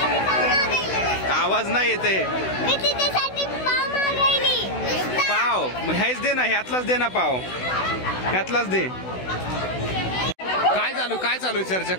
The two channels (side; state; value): right; late; 16 ms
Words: आवाज नाही येते. पाव हेच दे ना, ह्यातलाच दे ना पाव, ह्यातलाच दे. काय चालू चर्चा?